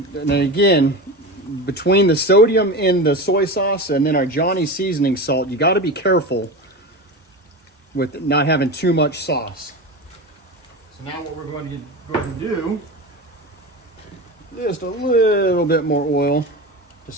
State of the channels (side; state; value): both; normal; correlation 0.26